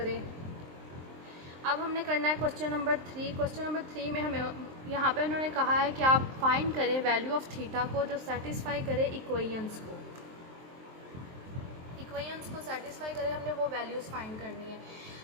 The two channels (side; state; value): left; late; 23 ms